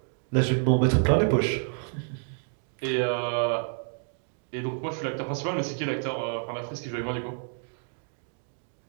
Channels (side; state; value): left; silent; 59 dB below the other